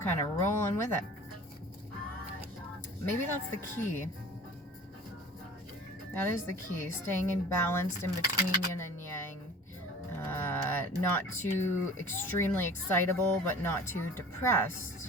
kind of rolling with it. Maybe that's the key. That is the key. Staying in balanced in between yin and yang. Not too extremely excitable, but not too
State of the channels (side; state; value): both; normal; correlation 0.43